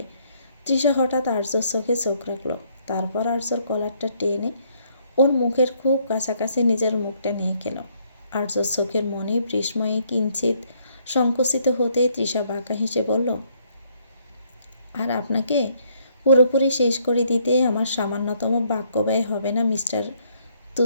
তৃষা হঠাৎ আর্যর চোখে চোখ রাখল। তারপর আর্যর কলারটা টেনে ওর মুখের খুব কাছাকাছি নিজের মুখটা নিয়ে গেল। আর্যর চোখের মনে বিস্ময়ে কিঞ্চিত সংকুচিত হতে তৃষা বাঁকা হেসে বলল, আর আপনাকে পুরোপুরি শেষ করে দিতে আমার সামান্যতম বাক্য ব্যয় হবে না মিস্টার।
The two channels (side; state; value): both; inverted; correlation -0.68